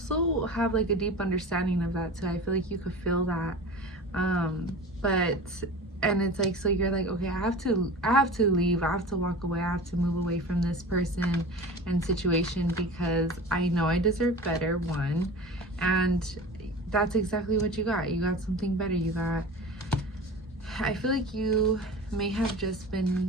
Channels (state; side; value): normal; both; correlation 0.34